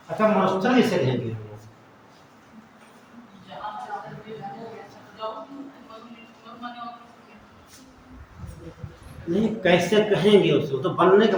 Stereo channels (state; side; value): identical; both; correlation 1.00